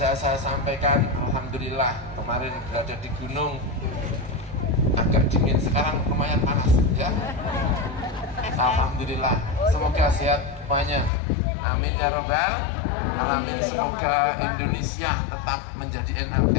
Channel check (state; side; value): drops out; right; at 11.1 s